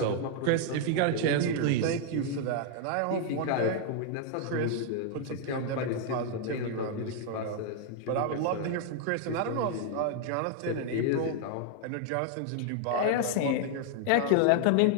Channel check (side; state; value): both; different; correlation 0.00